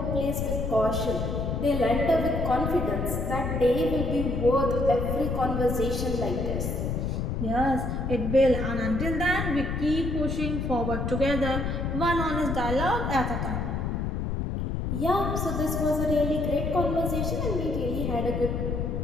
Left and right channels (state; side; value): noise; left; rumble, 1 dB below the sound